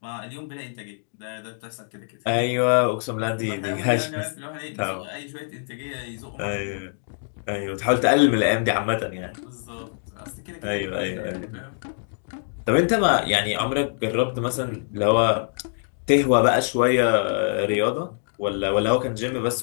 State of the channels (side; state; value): right; silent; digital silence